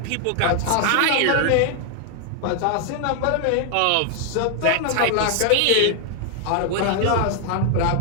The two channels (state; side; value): different; both; correlation 0.00